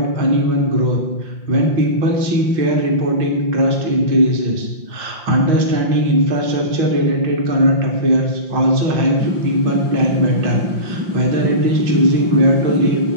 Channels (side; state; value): left; late; 5.7 ms